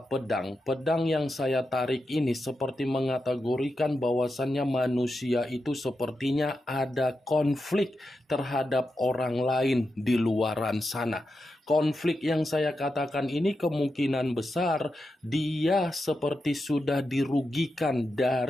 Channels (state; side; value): normal; both; correlation 0.88